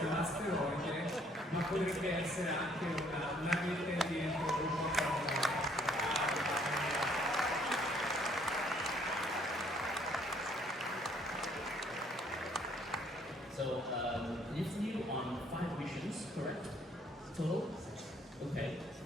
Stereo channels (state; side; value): normal; both; correlation 0.64